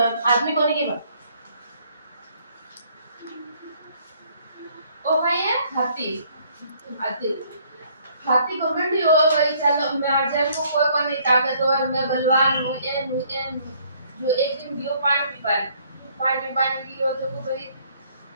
आदमी कोने के बा ओ भाई है हाथी हाथी हाथी गवर्नमेंट ही हो भाई चलो मैं आजर को कोई कोई ताकत और मैं बलवान हूं ए जो एक दिन दियो पानी की हो तो भाई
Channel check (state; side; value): inverted; both; correlation -0.63